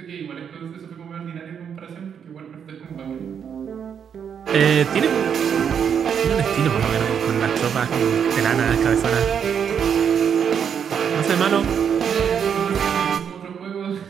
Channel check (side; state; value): left; quieter; 7.7 dB